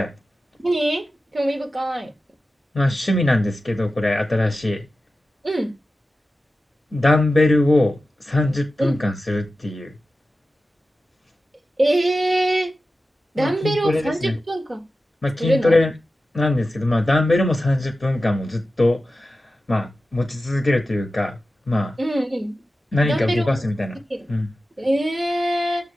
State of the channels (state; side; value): normal; both; correlation 0.94